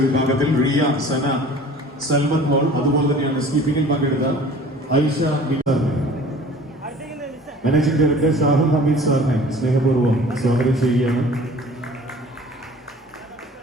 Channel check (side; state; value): both; normal; correlation 0.47